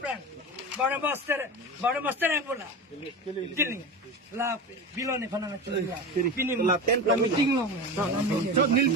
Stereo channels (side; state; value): both; normal; correlation 0.26